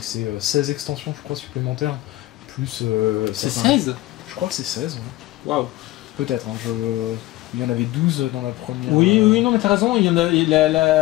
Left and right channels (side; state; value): right; quieter; 17.4 dB